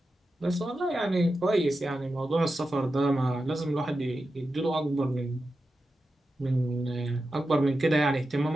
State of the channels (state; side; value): normal; both; correlation 0.91